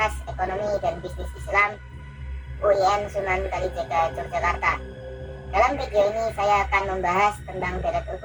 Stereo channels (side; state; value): both; identical; correlation 1.00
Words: Ekonomi dan Bisnis Islam, UIN Sunan Kalijaga, Yogyakarta. Dalam video ini saya akan membahas tentang deret